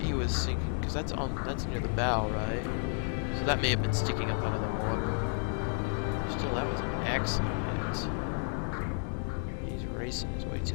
he was sinking, because that's near the bow, right? So that may have been sticking up out of the water. Still, that was an excellent hit. He's racing his way to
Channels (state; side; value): silent; right; 56 dB below the other